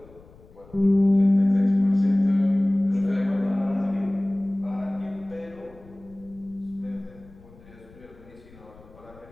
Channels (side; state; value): left; noise; rumble, 24 dB below the sound